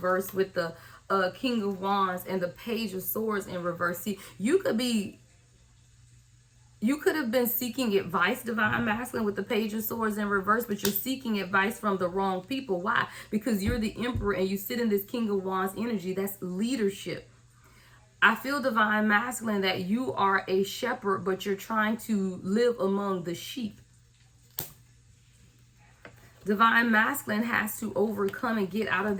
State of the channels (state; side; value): identical; both; correlation 1.00